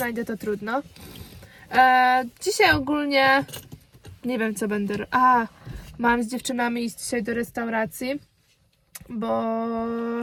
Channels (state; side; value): identical; both; correlation 1.00